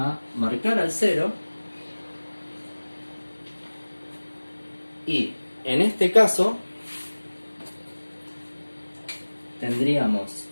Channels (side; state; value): both; inverted; correlation -1.00